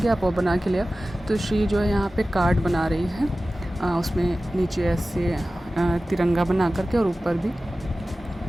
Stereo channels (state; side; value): normal; both; correlation 0.96